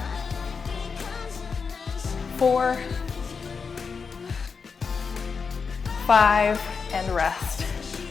4, 5, and rest.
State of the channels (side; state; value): right; quieter; 5.4 dB